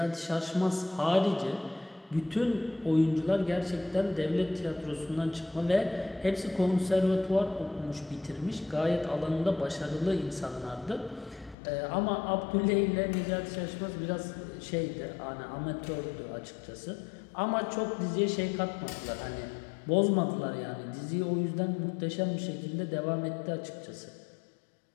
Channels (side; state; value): right; drops out; at 11.6 s